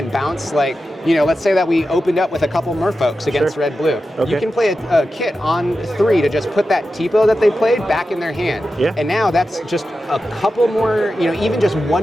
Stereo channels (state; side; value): normal; both; correlation 0.92